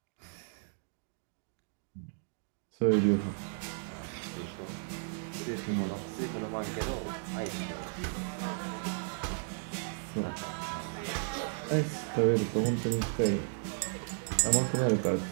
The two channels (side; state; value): left; silent; digital silence